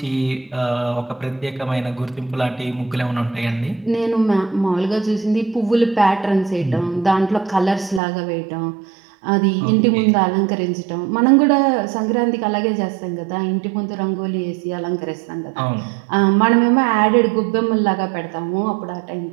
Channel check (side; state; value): left; drops out; at 8.0 s